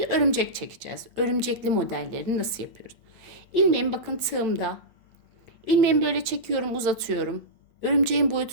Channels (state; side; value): late; left; 8.5 ms